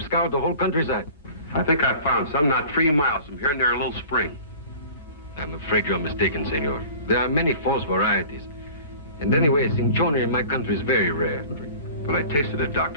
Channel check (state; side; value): inverted; both; correlation -0.43